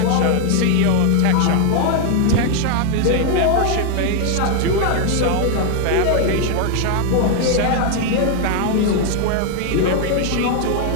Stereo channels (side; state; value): both; different; correlation 0.00